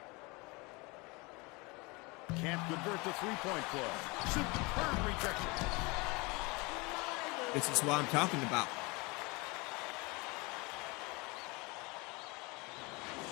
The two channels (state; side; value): quieter; right; 26.4 dB